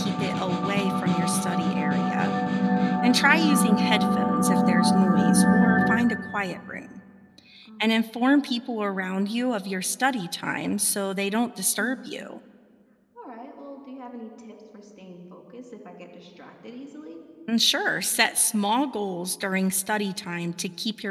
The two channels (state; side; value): identical; both; correlation 1.00